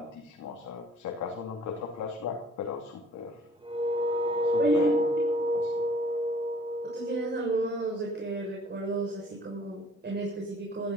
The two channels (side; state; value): both; normal; correlation 0.54